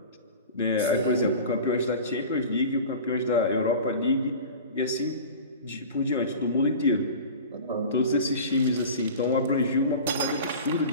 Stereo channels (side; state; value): both; inverted; correlation -0.36